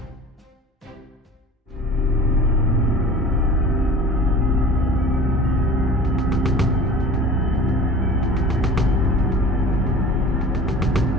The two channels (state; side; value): normal; both; correlation 0.41